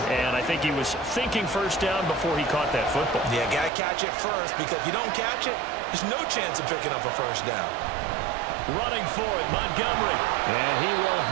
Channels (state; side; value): drops out; left; at 3.7 s